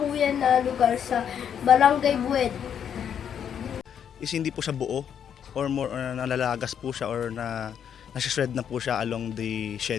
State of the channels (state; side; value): quieter; right; 8.5 dB